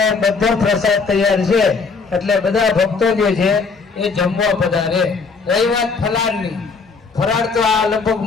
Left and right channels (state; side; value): quieter; right; 4.7 dB